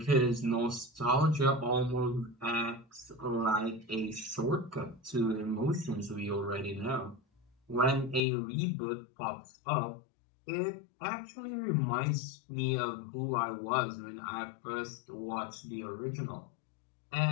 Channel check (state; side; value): drops out; right; at 8.2 s